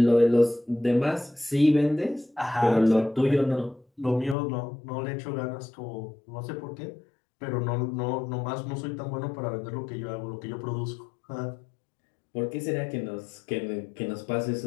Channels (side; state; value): right; drops out; at 4.4 s